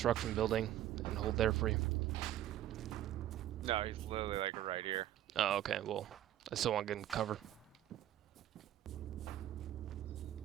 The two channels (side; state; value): left; quieter; 12.6 dB